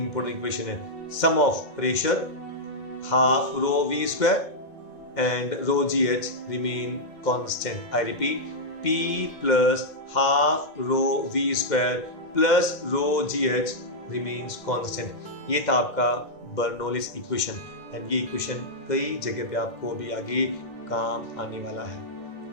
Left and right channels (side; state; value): right; late; 2.1 ms